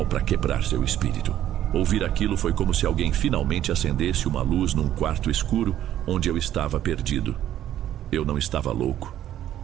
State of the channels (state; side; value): quieter; left; 11.9 dB